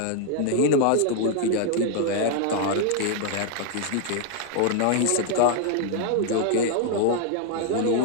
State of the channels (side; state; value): both; different; correlation 0.00